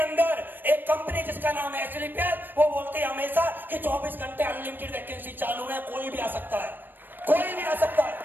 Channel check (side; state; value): left; late; 0.093 ms